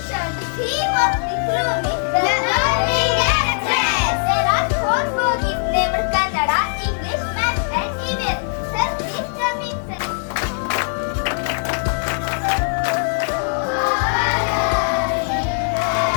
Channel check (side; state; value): right; silent; 63 dB below the other